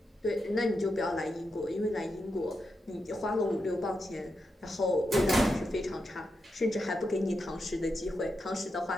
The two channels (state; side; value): normal; both; correlation 0.86